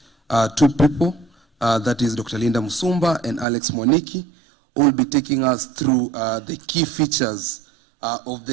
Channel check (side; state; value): left; drops out; at 3.5 s